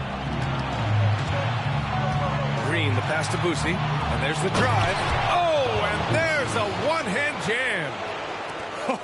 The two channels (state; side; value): identical; both; correlation 1.00